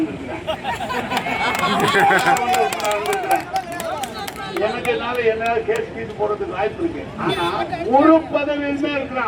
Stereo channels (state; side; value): identical; both; correlation 1.00